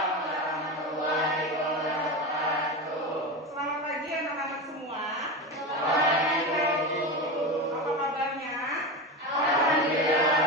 warahmatullahi wabarakatuh. Selamat pagi anak-anak semua. Selamat pagi. Apa kabarnya? Alhamdulillah.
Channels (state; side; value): normal; both; correlation 0.21